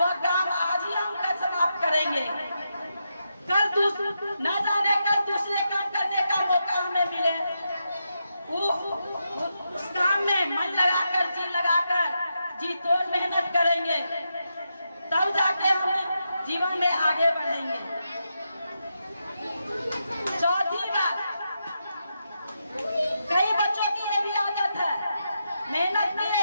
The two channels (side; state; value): both; inverted; correlation -0.85